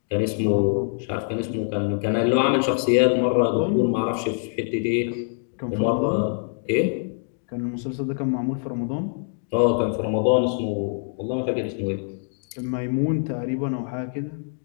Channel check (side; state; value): right; silent; digital silence